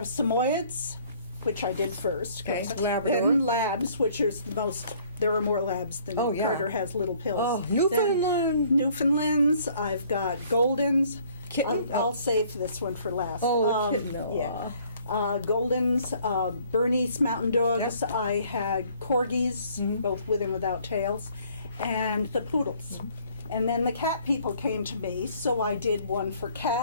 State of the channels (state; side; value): inverted; both; correlation -0.59